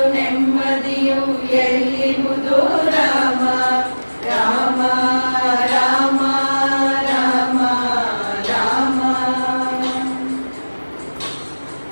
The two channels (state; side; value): inverted; both; correlation -1.00